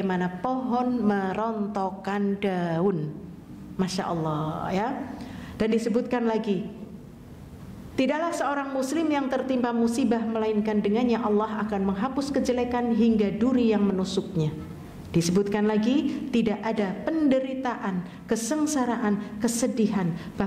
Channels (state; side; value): identical; both; correlation 1.00